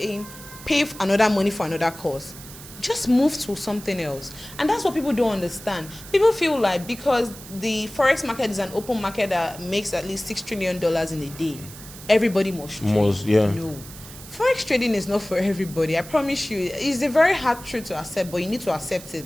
pay another money for another course. Just move to something else. And that's what people don't understand. People feel like because the Forex market is an open market that makes at least $6 trillion in a day, everybody must trade. Yeah. No. Forex trading is not for everybody. I promise you. It's a very hard truth to accept, but you need to accept it.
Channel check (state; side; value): noise; right; hiss, 16 dB below the sound